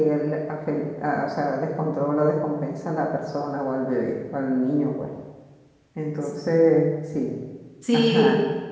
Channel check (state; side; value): identical; both; correlation 1.00